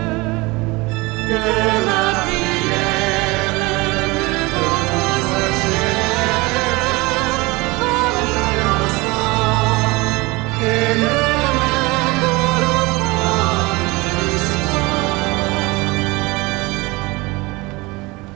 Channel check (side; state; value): left; quieter; 23.5 dB